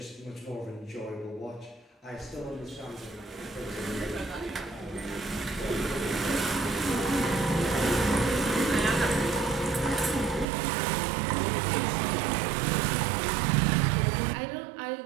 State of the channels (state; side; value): drops out; left; at 10.5 s